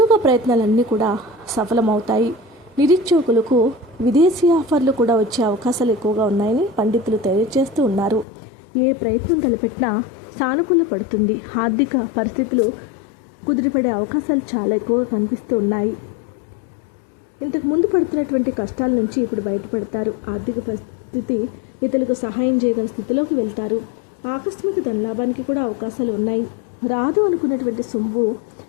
ప్రయత్నాలన్నీ కూడా సఫలమవుతాయి. నిరుద్యోగులకు విదేశీ ఆఫర్లు కూడా వచ్చే అవకాశాలు ఎక్కువగా ఉన్నాయని పండితులు తెలియజేస్తూ ఉన్నారు. ఏ ప్రయత్నం తలపెట్టినా సానుకూల పడుతుంది. ఆర్థిక పరిస్థితులు కుదిరిపడే అవకాశాలు చాలా ఎక్కువగా కనిపిస్తూ ఉన్నాయి. ఇంతకు ముందు పడుతున్నటువంటి కష్టాల నుంచి ఇప్పుడు బయటపడతారు. ఆర్థిక పరిస్థితి ఇతరులకు సహాయం చేయగల స్థితిలోకి వెళ్తారు. ఆకస్మిక ధనలాభానికి కూడా అవకాశాలు ఉన్నాయి. రాదు అనుకున్నటువంటి సొమ్ము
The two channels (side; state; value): right; drops out; at 8.2 s